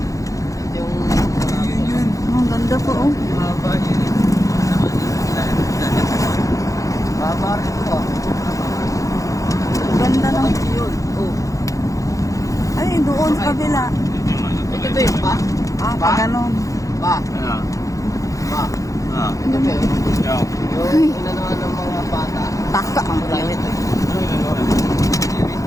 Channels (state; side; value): late; right; 0.16 ms